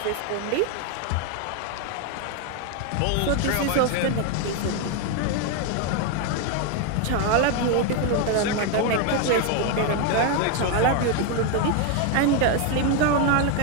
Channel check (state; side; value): different; both; correlation 0.01